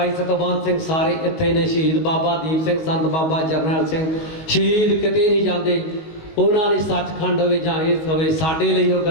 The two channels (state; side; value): late; right; 19 ms